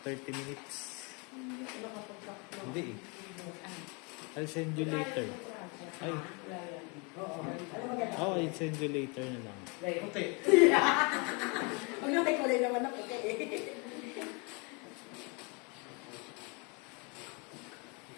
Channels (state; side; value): quieter; right; 31.7 dB